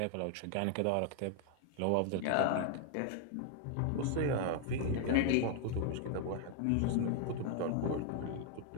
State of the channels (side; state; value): both; different; correlation 0.00